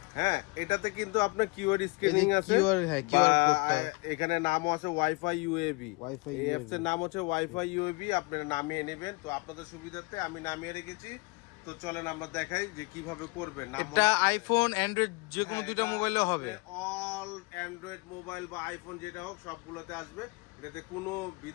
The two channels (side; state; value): right; quieter; 27.4 dB